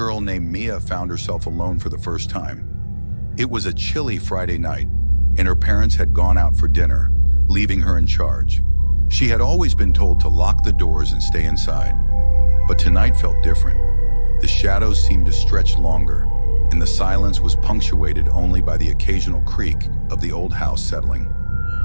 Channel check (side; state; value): both; inverted; correlation -1.00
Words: named Mia found herself alone for the first time. It was a chilly Friday night, and her parents had gone out for dinner, leaving her in charge. She had always been told to lock the doors and stay inside, but tonight felt different. The shadows seemed to stretch longer, and the silence was punctuated only by the occasional creak of the old house settling.